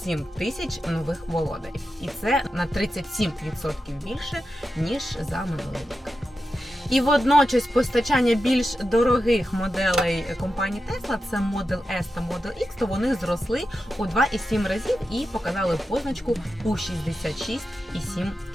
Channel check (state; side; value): normal; both; correlation 0.90